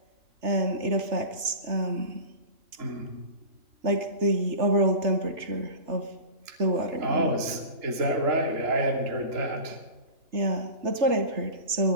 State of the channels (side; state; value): left; late; 3.3 ms